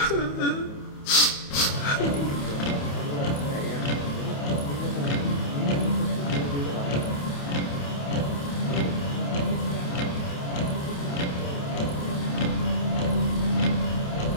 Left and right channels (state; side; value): late; right; 28 ms